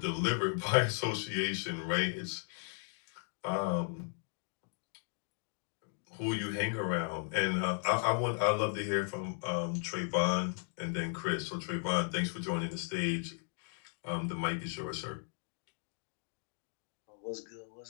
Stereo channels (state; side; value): silent; right; 54 dB below the other